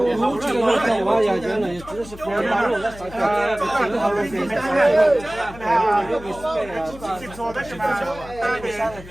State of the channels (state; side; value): noise; left; hum, 17 dB below the sound